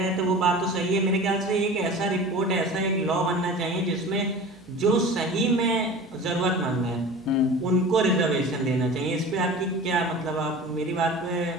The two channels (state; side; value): noise; left; hum, 29 dB below the sound